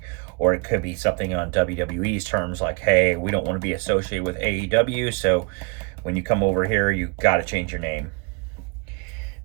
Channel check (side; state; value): left; quieter; 32.4 dB